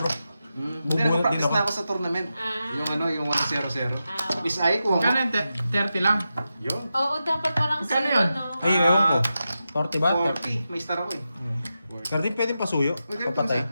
Hindi, Bubunot din practice ako. na ako sa tournament. Ah. Yung ano, yung 1-0-0. Ah. Miss Ay ko. Magkano yung 30 lang? Yun. Oo, dapat walang Magkano zero, yun? no? Ay, ewan ko. 40 ba? 40. May star ako eh. Kardin pwedeng pasuyo. Uy, ganito Papatay. sa-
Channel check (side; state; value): both; inverted; correlation -0.90